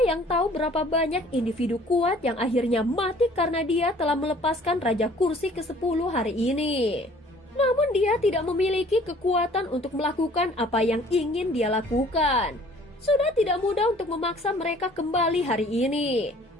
yang tahu berapa banyak individu kuat yang akhirnya mati karena dia telah melepaskan Raja Kursi ke-10 hari ini. Namun dia tidak memiliki kekuatan untuk melakukan apa yang ingin dia lakukan. Sudah tidak mudah untuk memaksa mereka kembali hari ini.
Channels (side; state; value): both; normal; correlation 0.54